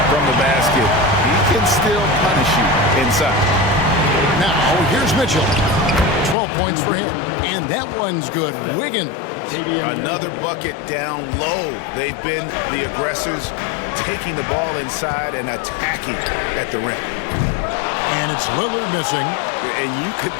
from the basket, he can still punish you inside. Now, here's Mitchell. 12 points for him. And that one's good. Wiggins. Another bucket down low. They've been the aggressors, taking the ball inside and attacking at the rim. And it's Lillard missing. And you could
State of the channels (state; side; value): drops out; right; at 6.4 s